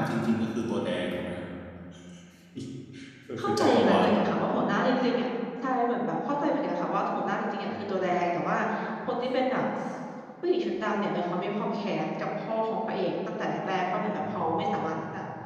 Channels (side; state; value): both; identical; correlation 1.00